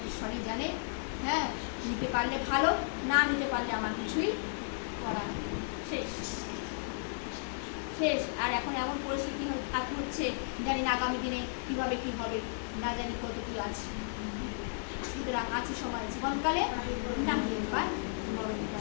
জানে। হ্যাঁ, নিতে পারলে ভালো, না নিতে পারলে আমার কিছুই করার শেষ শেষ। আর এখন এমন পরিস্থিতি হচ্ছে, জানি না আগামী দিনে কিভাবে কি হবে, না জানি কত কি আছে। সুতরাং আছে সময় জীবনকালে না এবার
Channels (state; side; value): silent; right; 55 dB below the other